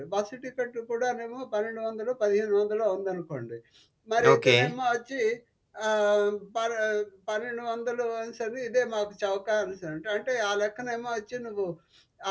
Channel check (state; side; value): identical; both; correlation 1.00